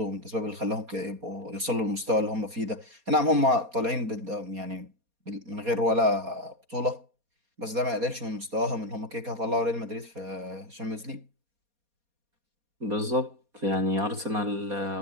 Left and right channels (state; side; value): late; left; 4.2 ms